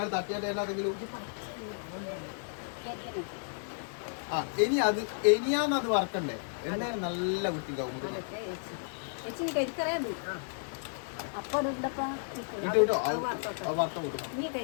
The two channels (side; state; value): right; silent; digital silence